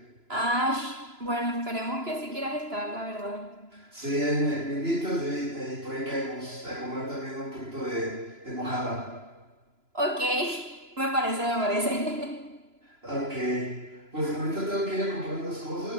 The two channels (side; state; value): left; late; 3.0 ms